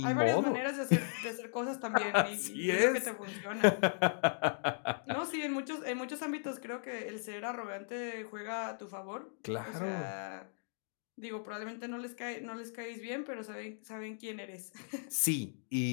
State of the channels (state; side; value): silent; right; digital silence